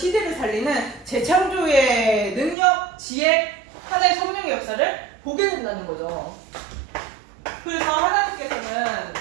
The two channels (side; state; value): left; drops out; at 2.6 s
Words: 살리는 재창조의 능력, 지혜, 하나의 성령의 역사를 보게 된다는 거죠. 그래서 하나님께서는